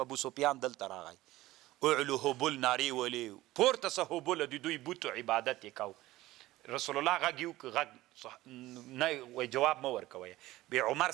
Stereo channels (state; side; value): quieter; left; 17.0 dB